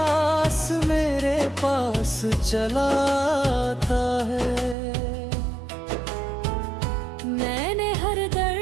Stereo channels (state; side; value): drops out; left; at 4.8 s